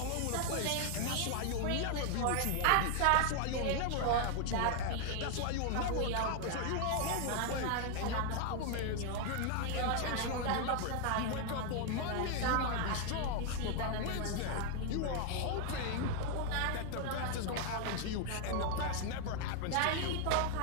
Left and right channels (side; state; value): both; different; correlation 0.00